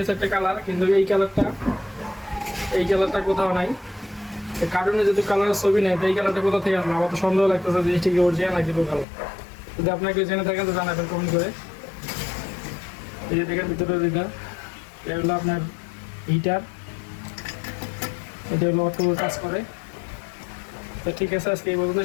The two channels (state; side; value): drops out; right; at 9.1 s